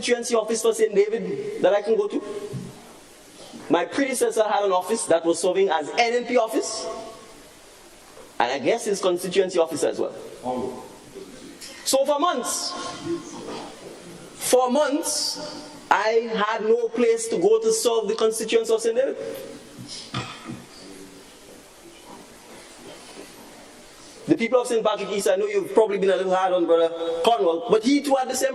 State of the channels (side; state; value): both; identical; correlation 1.00